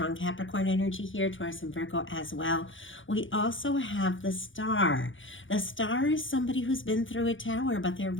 Capricorn energy here, Taurus and Virgo as well. We also have the Star. The Star is somebody who's been through a tower, but they're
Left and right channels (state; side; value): late; right; 0.57 ms